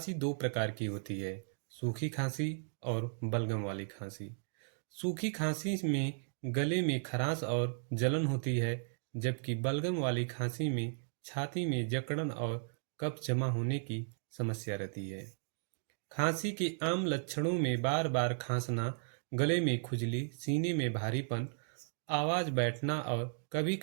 दो प्रकार की होती है, सूखी खांसी और बलगम वाली खांसी। सूखी खांसी में गले में खराश और जलन होती है, जबकि बलगम वाली खांसी में छाती में जकड़न और कफ जमा होने की समस्या रहती है। खांसी के आम लक्षणों में बार बार खांसना, गले में खुजली, सीने में भारीपन, आवाज बैठना और कभी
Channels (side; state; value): left; silent; digital silence